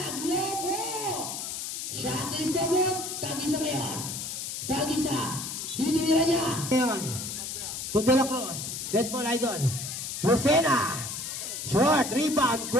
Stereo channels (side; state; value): left; noise; hiss, 5 dB below the sound